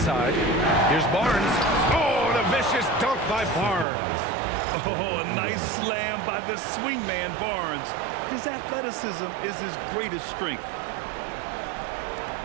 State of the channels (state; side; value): drops out; left; at 3.9 s